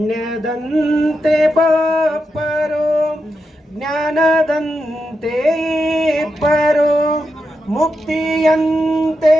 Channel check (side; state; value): both; normal; correlation 0.86